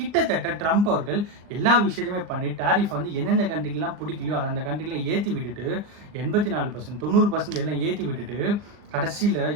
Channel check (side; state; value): left; late; 39 ms